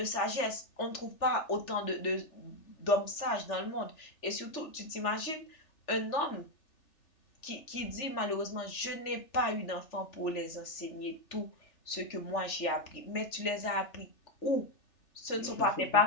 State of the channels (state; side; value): late; right; 3.4 ms